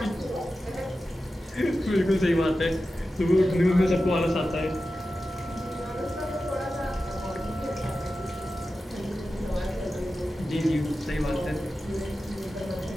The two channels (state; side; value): normal; both; correlation 0.93